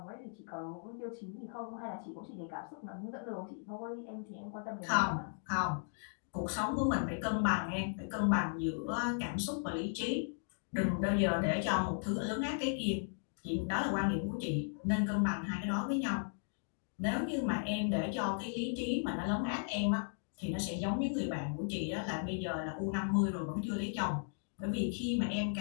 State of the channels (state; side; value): silent; right; digital silence